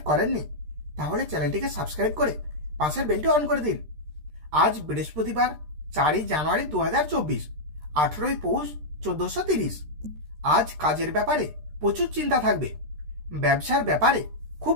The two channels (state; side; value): late; left; 13 ms